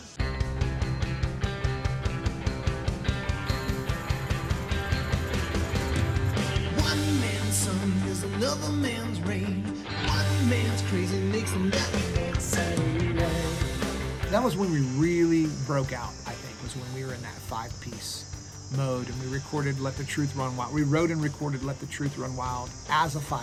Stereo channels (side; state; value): both; identical; correlation 1.00